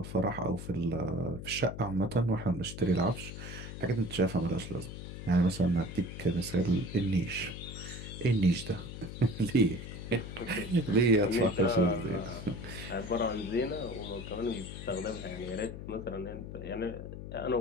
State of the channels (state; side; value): noise; left; hum, 9 dB below the sound